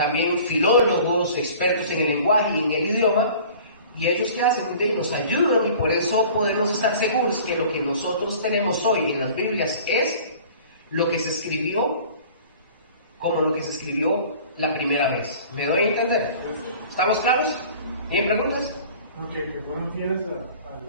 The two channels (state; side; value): inverted; both; correlation -0.46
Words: filólogos, expertos en el lenguaje y en el idioma, y ellos que hacen, nos ayudan, y por eso podemos estar seguros que lo que nosotros tenemos hoy en las Biblias es lo que se escribió como lo que se escribió la primera vez. ¿Me doy a entender? ¿Estamos claros? ¿Tienen preguntas? Ok, que fueron fieles